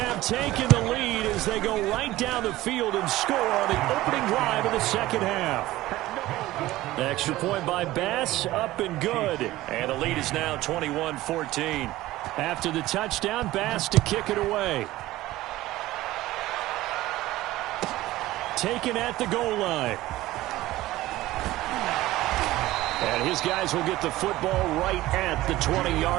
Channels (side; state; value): left; quieter; 16.8 dB